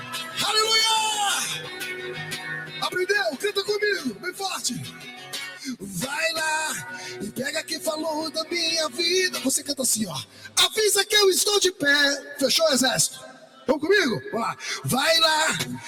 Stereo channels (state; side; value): identical; both; correlation 1.00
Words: Aleluia! Aprendeu? Canta comigo, bem forte. Vai lá e pega quem falou da minha vida. Você canta assim, ó. Avisa que eu estou de pé. Fechou, exército? Vamos comigo? Vamos lá. Vai lá